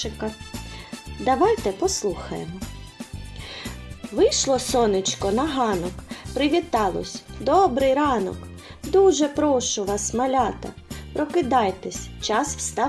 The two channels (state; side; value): identical; both; correlation 1.00